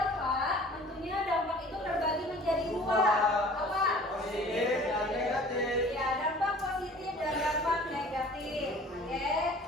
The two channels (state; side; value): normal; both; correlation 0.48